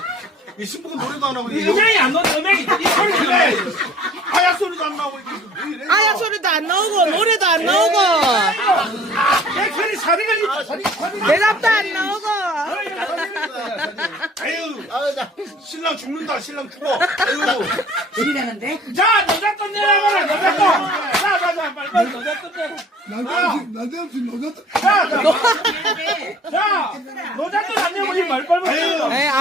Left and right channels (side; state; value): both; normal; correlation 0.51